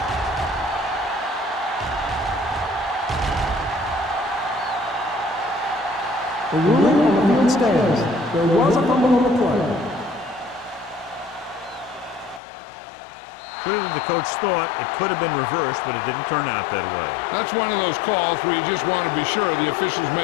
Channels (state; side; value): drops out; right; at 12.4 s